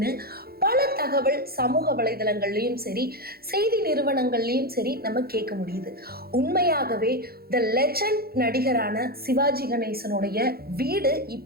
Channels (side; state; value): left; late; 0.44 ms